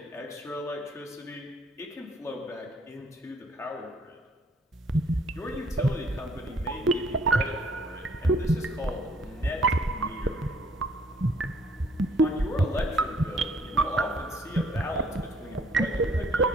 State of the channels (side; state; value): both; normal; correlation 0.61